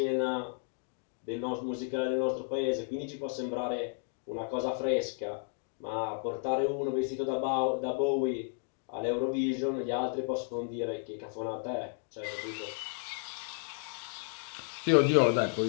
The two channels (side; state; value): right; silent; 56 dB below the other